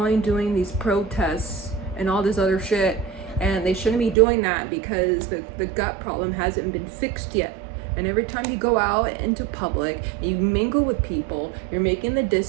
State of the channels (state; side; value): drops out; left; at 4.2 s